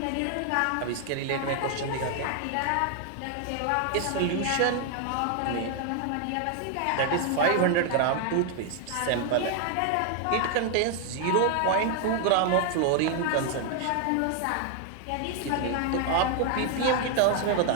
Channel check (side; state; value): both; different; correlation 0.00